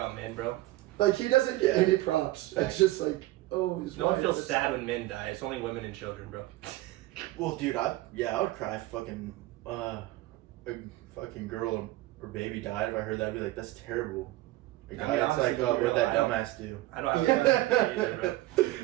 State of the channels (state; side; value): quieter; left; 17.7 dB